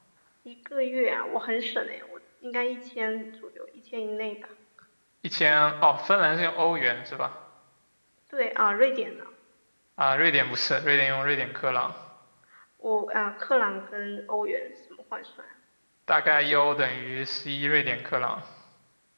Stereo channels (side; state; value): both; inverted; correlation -1.00